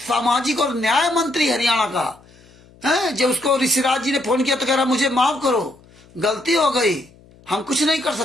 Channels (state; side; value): noise; left; hum, 27 dB below the sound